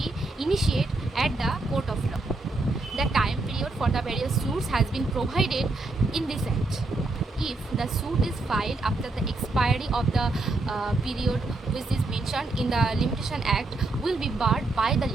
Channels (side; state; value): left; quieter; 3.1 dB